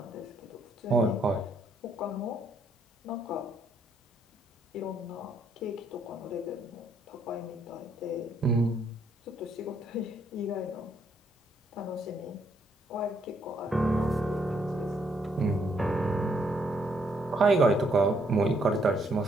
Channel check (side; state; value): both; normal; correlation 0.71